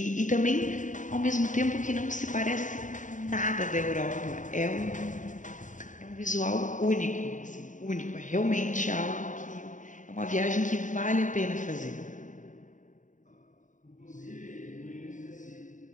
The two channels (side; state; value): right; late; 0.37 ms